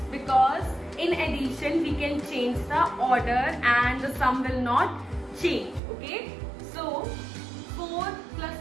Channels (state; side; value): drops out; left; at 5.8 s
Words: because in addition we can change the order and the sum will not change. Okay, so 4 plus